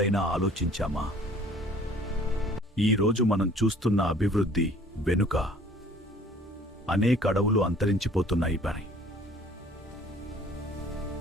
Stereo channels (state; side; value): normal; both; correlation 0.53